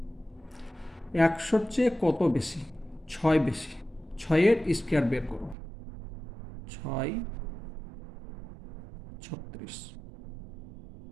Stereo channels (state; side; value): drops out; left; at 5.6 s